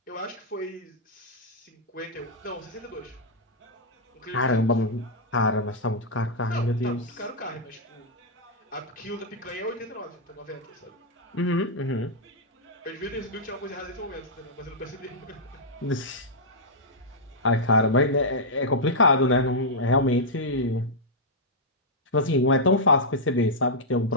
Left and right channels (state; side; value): normal; both; correlation -0.08